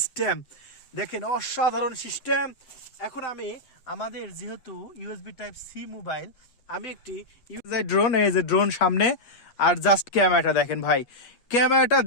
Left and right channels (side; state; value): right; late; 8.5 ms